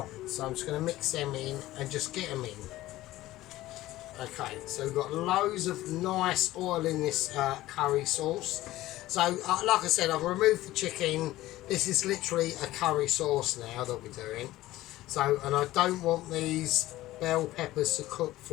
so I'm just going to mix them in and just get them in. Okay, so we've got loads of nice oil in this curry sauce. So, like I said, I've removed the chicken. This is literally a curry sauce now that we're doing. So, and I don't want these bell peppers to cook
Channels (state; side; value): quieter; right; 16.3 dB